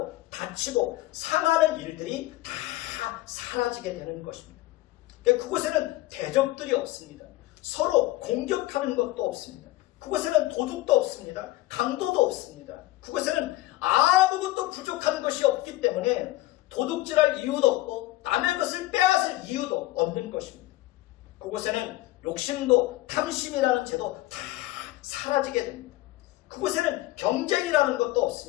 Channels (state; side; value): quieter; right; 17.5 dB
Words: 다치고 상하는 일들이 다 사라지게 되는 것입니다. 그곳에는 대적들이 없습니다. 서로 공격하는 것도 없습니다. 그곳에는 도둑도 없습니다. 강도도 없습니다. 그곳에는 아무것도 부족한 것이 없기 때문에 도둑질할 이유도 없고 남의 것을 빼앗을 이유도 없는 것입니다. 그곳에는 욕심도 탐심이라는 죄도 다 사라지게 됩니다. 그곳에는 경쟁이라는 것도